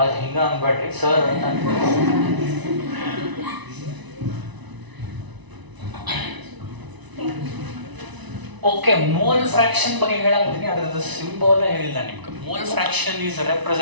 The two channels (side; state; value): left; late; 1.0 ms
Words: ಹಿಂಗ ಅನ್ಬೇಡ್ರಿ ಸರ್ ಅಂತ. ಓಕೆ, ಮೋಲ್ ಫ್ರಾಕ್ಷನ್ ಬಗ್ಗೆ ಹೇಳಾಕತ್ತೀನಿ. ಅದರದ್ದು ಸಿಂಬಲ್ ಹೇಳಿಲ್ಲ ನಿಮ್ಗೆ. Mole fraction is